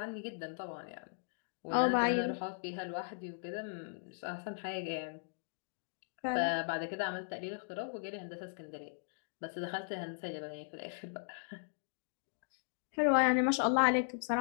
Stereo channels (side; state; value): right; silent; digital silence